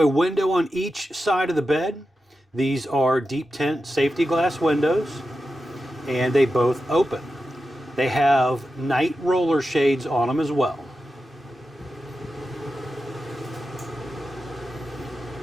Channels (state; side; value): normal; both; correlation 0.91